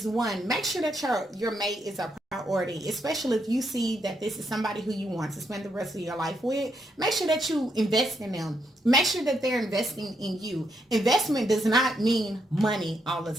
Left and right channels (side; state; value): both; normal; correlation 0.78